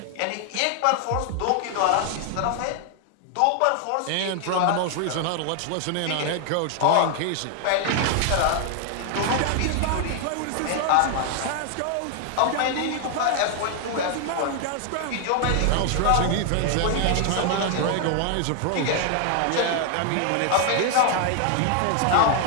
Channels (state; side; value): different; both; correlation 0.00